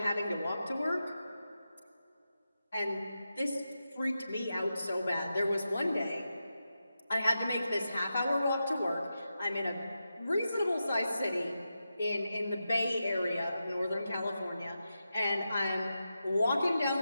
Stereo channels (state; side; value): inverted; both; correlation -0.90